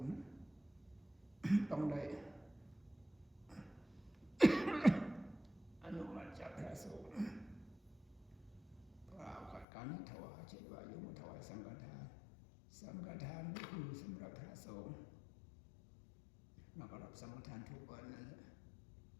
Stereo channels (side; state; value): right; drops out; at 9.7 s